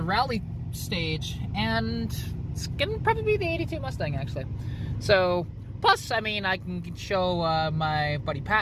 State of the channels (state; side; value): identical; both; correlation 1.00